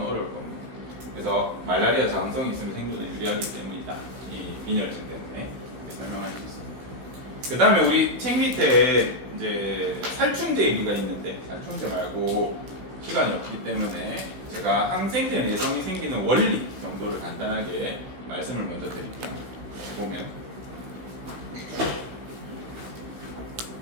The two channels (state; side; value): late; left; 16 ms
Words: 어려울 겁니다. 그래서 말라리아 저항성이 있으면 생존에 유리하기 때문이다. 이 빈혈증 때문에 설명할 수 있습니다. 그 다음에 우리 책 밑에 이제 살충제 얘기가 있는데 살충제 말고 시간이 없기 때문에 제가 항생제 내성이 생기는 원리 정도를 간단하게 말씀을 먼저 드릴게요. 보면